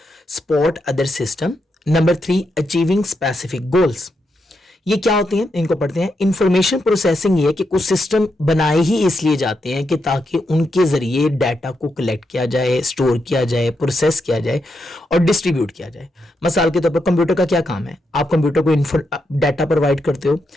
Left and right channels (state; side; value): normal; both; correlation 0.83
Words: support other system, number 3 achieving specific goals. ये क्या होते हैं, इनको पढ़ते हैं। इंफॉर्मेशन प्रोसेसिंग ये कि कुछ सिस्टम बनाए ही इसलिए जाते हैं कि ताकि उनके जरिए डाटा को कलेक्ट किया जाए, स्टोर किया जाए, प्रोसेस किया जाए और डिस्ट्रीब्यूट किया जाए। मिसाल के तौर पर कंप्यूटर का क्या काम है? आप कंप्यूटर को डाटा प्रोवाइड करते हो,